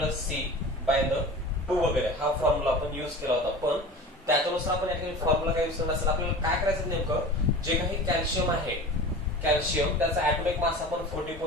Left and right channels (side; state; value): both; normal; correlation 0.36